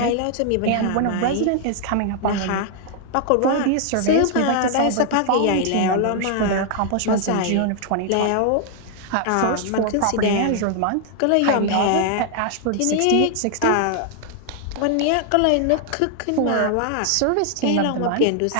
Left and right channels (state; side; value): different; both; correlation 0.00